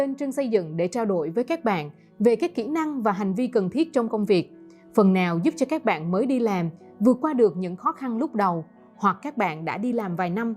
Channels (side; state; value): both; identical; correlation 1.00